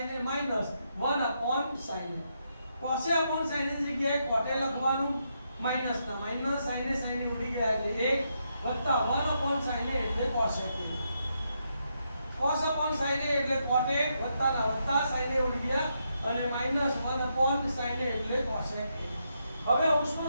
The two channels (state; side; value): inverted; both; correlation -0.80